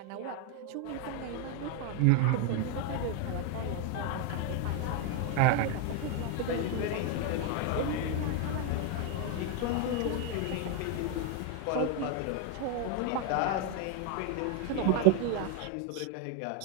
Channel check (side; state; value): both; different; correlation 0.01